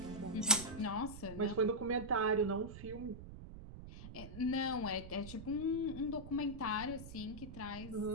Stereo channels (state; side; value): noise; right; rumble, 12 dB below the sound